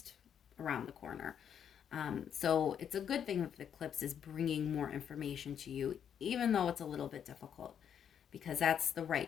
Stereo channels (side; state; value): right; quieter; 8.5 dB